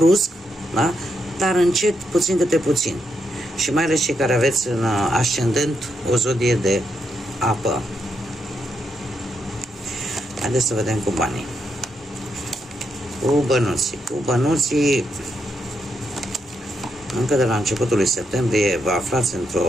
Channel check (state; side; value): normal; both; correlation 0.81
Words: da? Dar încet, puțin câte puțin. Și mai ales cei care aveți în ascendent o zodie de apă. Haideți să vedem cu banii. Cu bănuții. încă de la începutul lui septembrie vă aflați